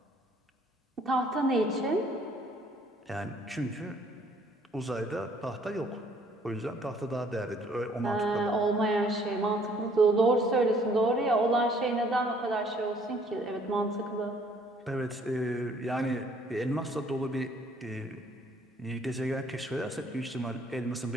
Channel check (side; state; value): both; normal; correlation 0.61